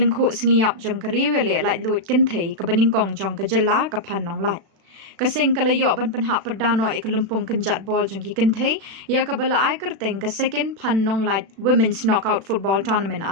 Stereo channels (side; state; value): left; late; 36 ms